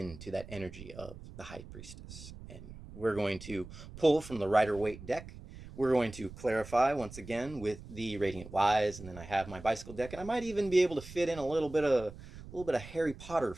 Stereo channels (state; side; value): noise; right; rumble, 15 dB below the sound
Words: that energy of the High Priestess. And we're going to pull from the Rider-Waite deck. We're going to clarify once again with the Radiant Wise, and then I have my bicycle deck, and I might even be able to fit in a little bit of Harry Potter